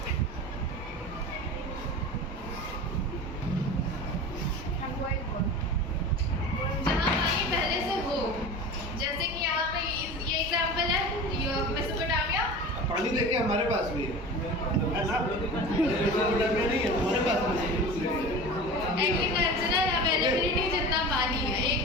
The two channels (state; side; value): normal; both; correlation 0.34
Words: जहाँ पानी पहले से हो, जैसे कि यहाँ पे ये एग्जाम्पल है मेसोपोटामिया. पानी लेके हमारे पास भी है ना, मेसोपोटामिया नहीं है हमारे पास भी. एग्रीकल्चरल अवेलेबिलिटी जितना पानी है, एक